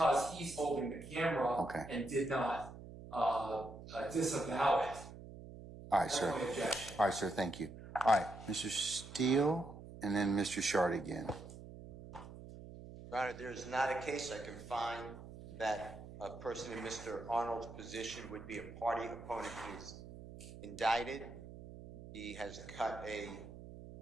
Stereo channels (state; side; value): noise; right; hum, 14 dB below the sound